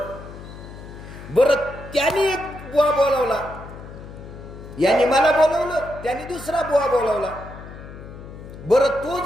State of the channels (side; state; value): left; noise; hum, 14 dB below the sound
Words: बरं त्याने एक बुवा बोलावला, यांनी मला बोलवलं, त्याने दुसरा बुवा बोलावला. बरं तो